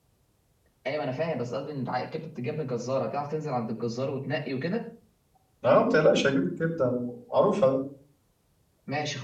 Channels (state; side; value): identical; both; correlation 1.00